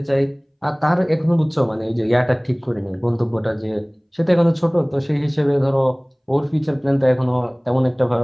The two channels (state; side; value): identical; both; correlation 1.00